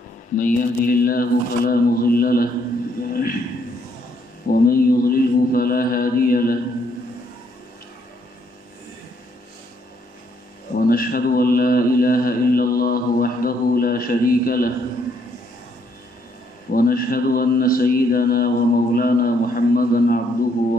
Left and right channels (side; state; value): both; normal; correlation 0.70